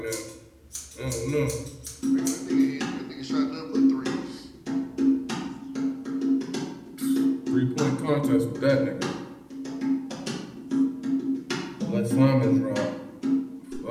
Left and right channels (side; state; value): both; identical; correlation 1.00